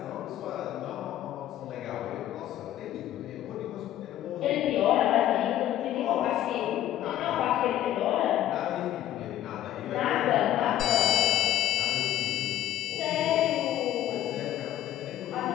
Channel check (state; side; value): quieter; right; 12.4 dB